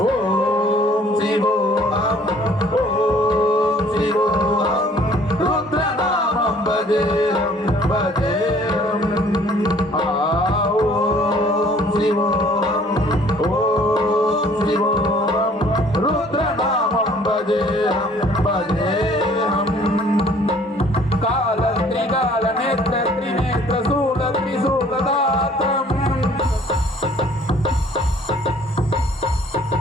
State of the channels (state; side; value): normal; both; correlation 0.56